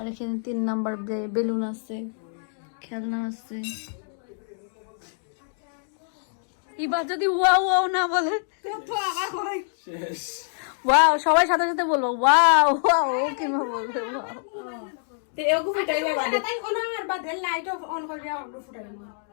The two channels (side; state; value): right; silent; digital silence